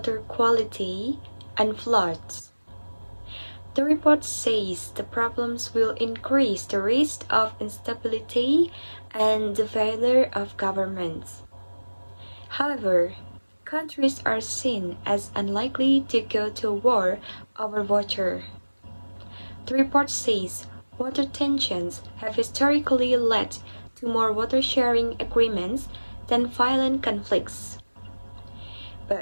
quality, and floods. The report says the problems will increase the risk of instability and the failure of governments. However, countries are seen as unlikely to go to war over water. The report says water tensions have historically led to more water-sharing agreements than violent conflicts.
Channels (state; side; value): inverted; both; correlation -1.00